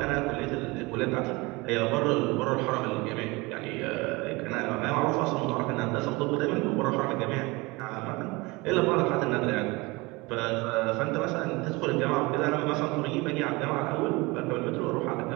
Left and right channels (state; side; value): quieter; left; 24.1 dB